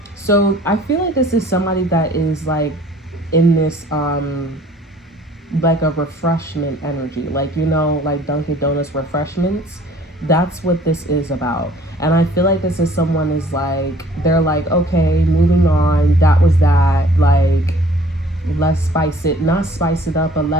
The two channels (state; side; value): normal; both; correlation 0.54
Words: So I feel like this is somebody that is like in this like a refreshment energy, like, you know, like Dunkin' Donuts refreshments. That's what this is about. And I feel like this is someone is like, they're like, okay, moving on, that was that, like, let's spice it, not spice it up, but